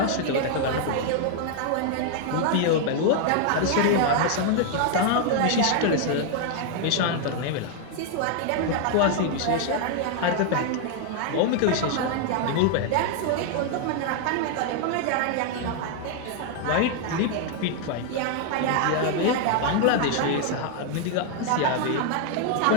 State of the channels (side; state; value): both; different; correlation 0.00